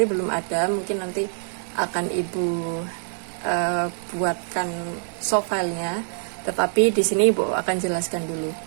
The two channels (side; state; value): left; silent; digital silence